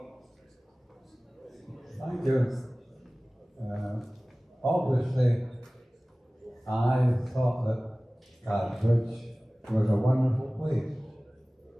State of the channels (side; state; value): both; normal; correlation 0.98